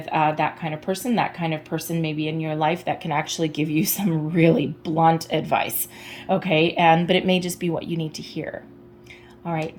that kind of person may be in your life that can actually give you some really blunt advice, okay? But it may just be what you need to hear. All right,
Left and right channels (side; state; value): both; identical; correlation 1.00